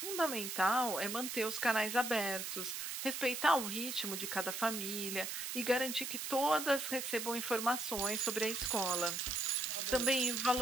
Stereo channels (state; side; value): noise; right; hiss, 4 dB below the sound